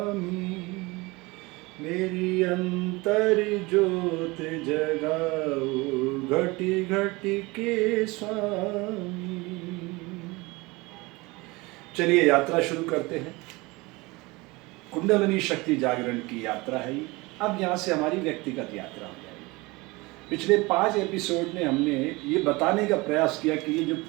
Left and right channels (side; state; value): left; quieter; 23.6 dB